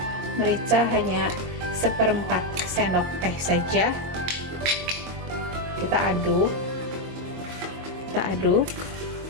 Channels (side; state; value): left; late; 22 ms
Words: hanya 1/4 sendok teh saja. Kita aduk